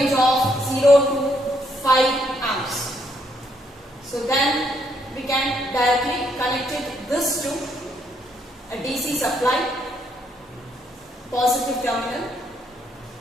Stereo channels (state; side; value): normal; both; correlation 0.73